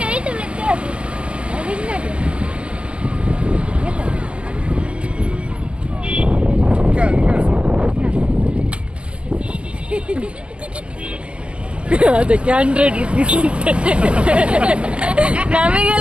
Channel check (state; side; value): late; left; 0.059 ms